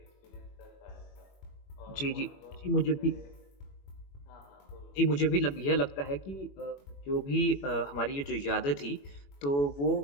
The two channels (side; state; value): right; late; 21 ms